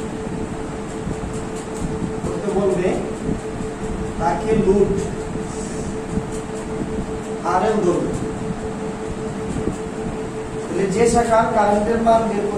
তাকে লোড আরএল ধরবে। যে শাখার কারেন্টের মান বের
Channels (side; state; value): both; identical; correlation 1.00